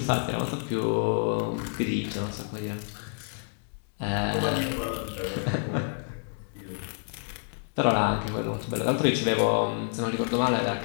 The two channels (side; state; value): right; silent; 56 dB below the other